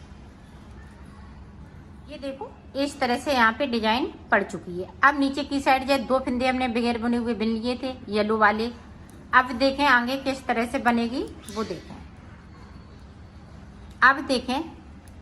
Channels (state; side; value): identical; both; correlation 1.00